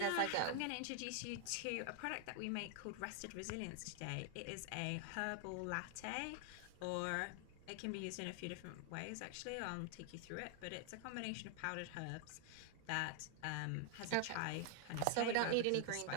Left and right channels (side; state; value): both; different; correlation 0.00